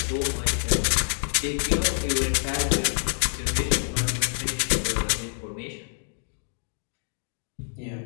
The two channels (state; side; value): silent; right; digital silence